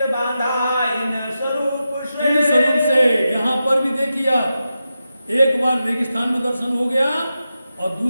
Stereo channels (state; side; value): inverted; both; correlation -0.90